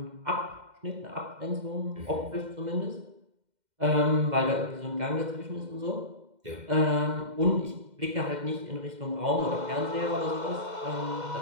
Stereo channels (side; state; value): left; late; 2.1 ms